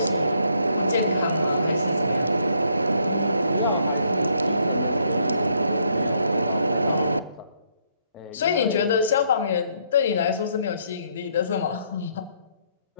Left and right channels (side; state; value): both; inverted; correlation -0.70